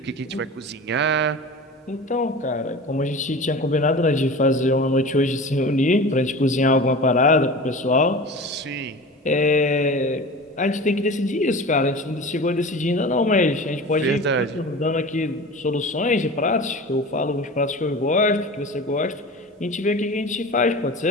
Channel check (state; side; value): normal; both; correlation 0.34